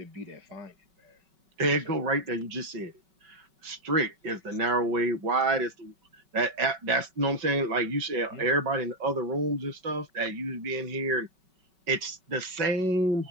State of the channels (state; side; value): late; left; 5.3 ms